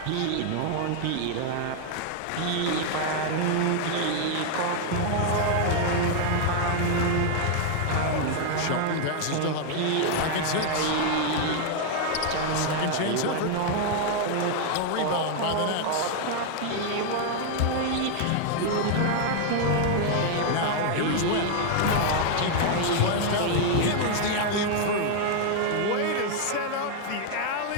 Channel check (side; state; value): both; different; correlation 0.00